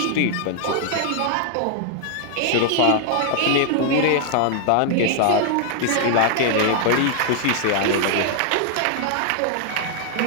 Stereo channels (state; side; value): different; both; correlation 0.00